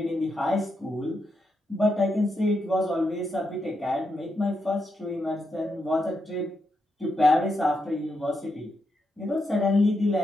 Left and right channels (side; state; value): both; normal; correlation 0.83